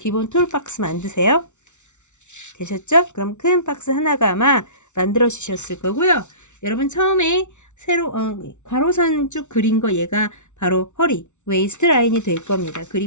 툴 박스 만드세요. 되셨죠? 그럼 큰 박스 하나가 아마 만들어 주셨을 거고요. 여러분 처음에 세로 가로선 쭉 그린 거 얘가 바로 허리 웨이스트 라인이 될 겁니다.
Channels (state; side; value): late; right; 0.83 ms